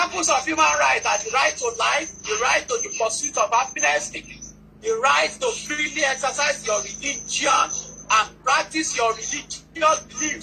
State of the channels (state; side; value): identical; both; correlation 1.00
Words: of human rights are the right to life, the right to the pursuit of happiness, the right to freely exercise your religion and practice your religious